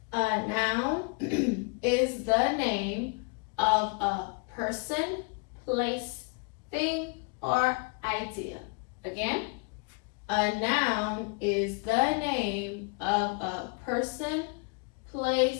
A noun is the name of a person, place, thing, or idea. Again, a noun is the name of a person,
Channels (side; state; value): right; quieter; 32.9 dB